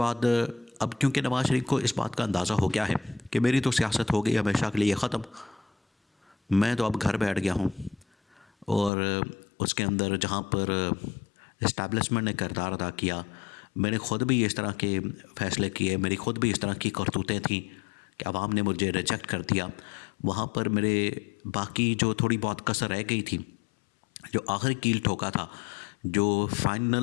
अब क्योंकि नवाज शरीफ को इस बात का अंदाज़ा हो गया है कि मेरी तो सियासत हो गई हमेशा के लिए ख़त्म, मैं तो अब घर बैठ गया हूँ। और उसके अंदर जहाँ पर इस्टेब्लिशमेंट ने किरदार अदा किया, मैंने ख़ुद भी इस तरह के फ़ैसले किए, मेरी ख़ुद भी इस तरह की करतूतें थीं कि आवाम ने मुझे रिजेक्ट कर दिया। वहाँ पर मेरे बाकी जो थोड़ी बहुत कसर रह गई थी, जो आखिरी कील ठोका था, जो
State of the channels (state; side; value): drops out; right; at 8.9 s